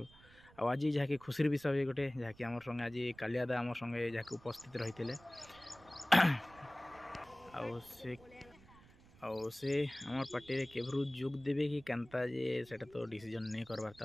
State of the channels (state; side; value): noise; right; rumble, 24 dB below the sound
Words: आज जहाँकि खुशी विषय गोटे जहाँकि आम संगे आज कालियादा आम संगे जहाँकि उपस्थित रही से आम पार्टी केवरू जोग देवे कि केनता जे सेटा तो डिसीजन नहीं करवार था